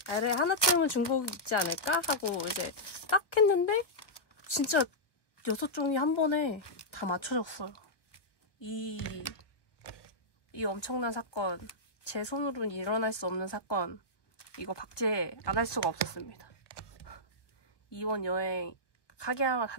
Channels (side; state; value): right; late; 1.1 ms